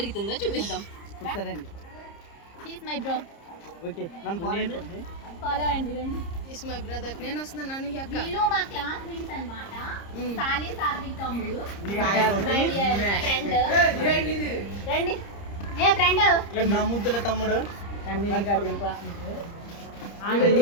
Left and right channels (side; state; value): right; late; 30 ms